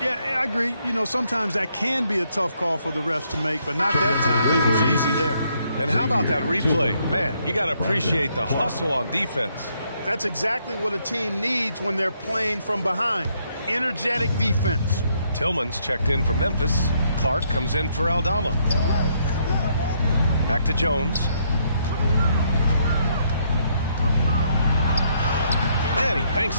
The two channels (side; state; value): both; inverted; correlation -0.72